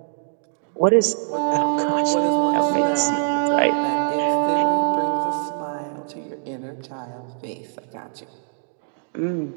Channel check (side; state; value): left; silent; digital silence